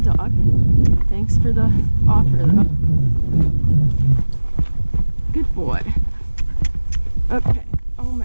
dog. Thanks for the offer though. Good boy. Okay. Oh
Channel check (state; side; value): inverted; both; correlation -1.00